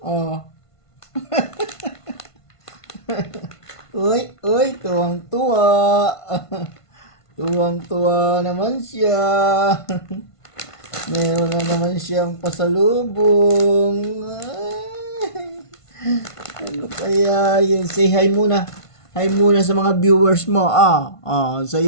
O. Uy, uy, tuwang-tuwa. Tuwang-tuwa naman siya. Meron na naman siyang pasalubong. Ay, ano kaya yun? Say hi muna. Hi muna sa mga viewers mo. Sa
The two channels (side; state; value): right; late; 1.5 ms